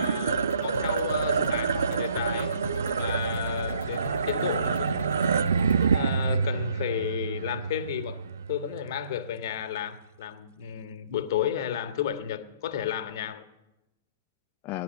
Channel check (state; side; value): inverted; both; correlation -0.61